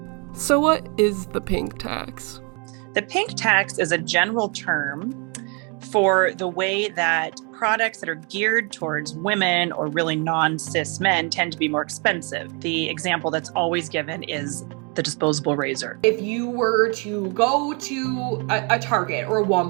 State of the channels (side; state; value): left; quieter; 34.1 dB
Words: So what is the pink tax? The pink tax is a general term for the way that products that are geared towards women or really non-cis men tend to be more expensive. The example that's always given is the disposable razor. If you were to go to a Target or a